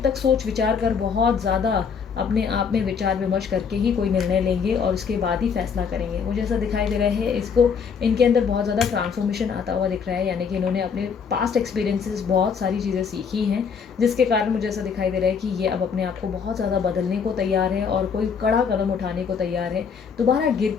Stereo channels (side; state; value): right; quieter; 6.3 dB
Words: तक सोच विचार कर बहुत ज़्यादा अपने आप में विचार विमर्श करके ही कोई निर्णय लेंगे और उसके बाद ही फैसला करेंगे। मुझे ऐसा दिखाई दे रहा है इसको इनके अंदर बहुत ज़्यादा ट्रांसफॉर्मेशन आता हुआ दिख रहा है, यानी कि इन्होंने अपने पास्ट एक्सपीरियंसेस बहुत सारी चीज़ें सीखी हैं, जिसके कारण मुझे ऐसा दिखाई दे रहा है कि ये अब अपने आप को बहुत ज़्यादा बदलने को तैयार है और कोई कड़ा कदम उठाने को तैयार है। दोबारा गिर